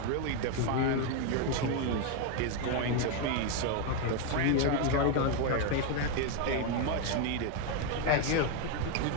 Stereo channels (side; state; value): both; different; correlation 0.01